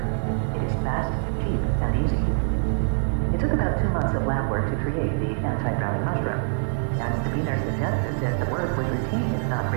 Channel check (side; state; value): left; silent; digital silence